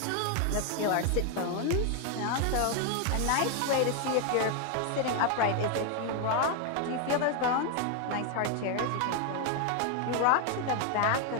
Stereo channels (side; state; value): both; different; correlation 0.01